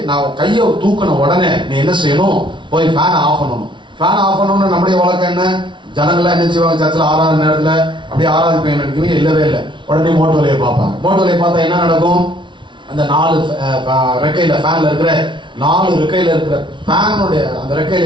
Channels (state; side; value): late; left; 0.24 ms